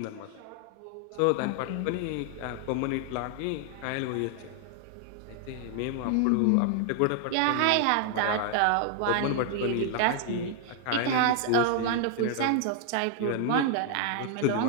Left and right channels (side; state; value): both; different; correlation 0.00